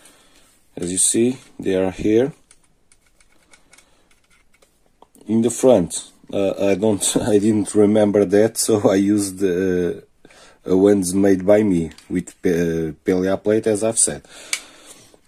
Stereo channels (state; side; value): identical; both; correlation 1.00